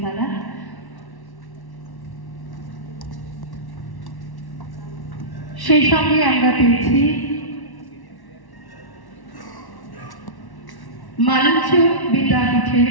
দাদা। সেই সঙ্গে আমরা পেয়েছি মালঞ্চ বিদ্যাপীঠের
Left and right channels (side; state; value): right; late; 1.1 ms